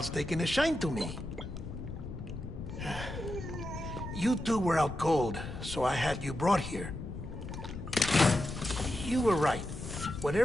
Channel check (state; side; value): noise; left; rumble, 9 dB below the sound